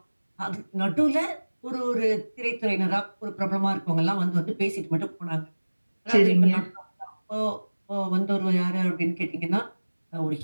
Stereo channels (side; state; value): both; inverted; correlation -1.00